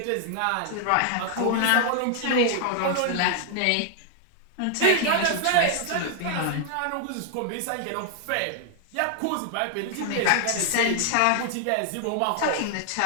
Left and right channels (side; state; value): both; different; correlation 0.00